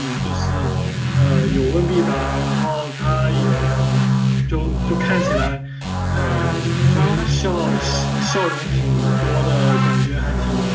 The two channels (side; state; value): both; identical; correlation 1.00